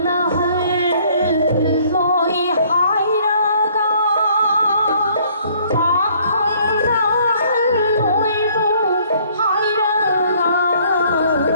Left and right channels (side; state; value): both; inverted; correlation -0.61